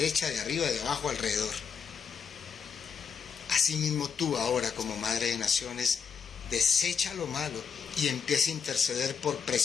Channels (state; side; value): quieter; right; 6.5 dB